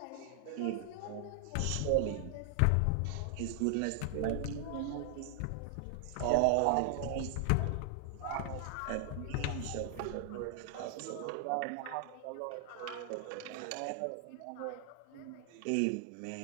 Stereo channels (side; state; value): both; different; correlation 0.00